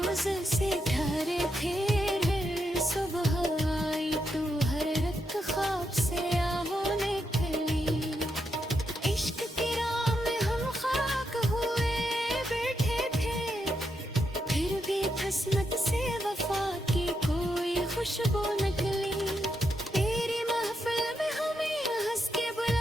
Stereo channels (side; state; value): both; normal; correlation 0.82